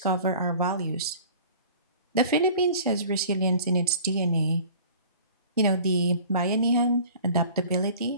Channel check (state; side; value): inverted; both; correlation -0.45